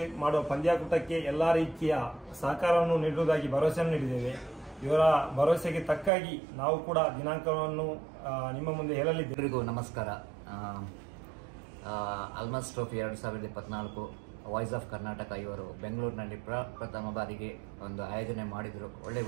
ಮಾಡುವ ಪಂದ್ಯಾಕೂಟಕ್ಕೆ ಎಲ್ಲ ರೀತಿಯ ಸಹಕಾರವನ್ನು ನೀಡುವುದಾಗಿ ಭರವಸೆಯನ್ನು ನೀಡಿದ್ದೇವೆ. ಇವರ ಭರವಸೆಗೆ ತಕ್ಕಾಗಿ ನಾವು ಕೂಡ ದಿನಾಂಕವನ್ನು ನಿಮ್ಮ ಮುಂದೆ ಹೇಳಲಿದ್ದೇವೆ. ಎಲ್ಲರಿಗೂ ನಮಸ್ಕಾರ. ಎಲ್ಮಾಸ್ ಟ್ರೋಫಿ 2024 ವಾಯ್ಸ್ ಆಫ್ ಕರ್ನಾಟಕ ಇವರು ಬೆಂಗಳೂರಿನಲ್ಲಿ ಪ್ರಥಮ ಬಾರಿಗೆ ಒಂದು ಆಯೋಜನೆ ಮಾಡಿದರು. ಒಳ್ಳೆಯ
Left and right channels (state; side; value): drops out; left; at 6.1 s